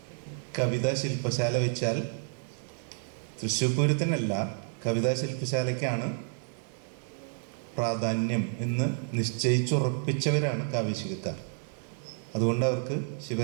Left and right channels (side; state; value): left; silent; 58 dB below the other